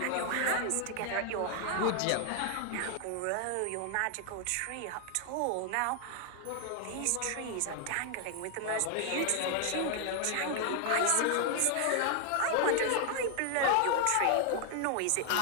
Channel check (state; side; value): different; both; correlation 0.00